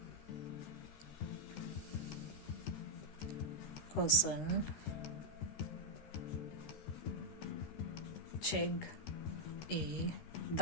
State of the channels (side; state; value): right; late; 13 ms